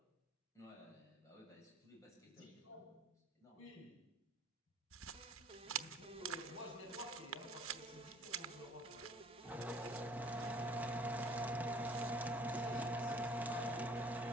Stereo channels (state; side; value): normal; both; correlation 0.54